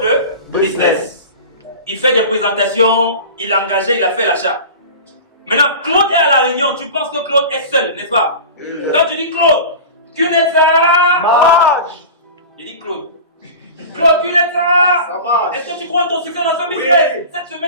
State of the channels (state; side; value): inverted; both; correlation -0.34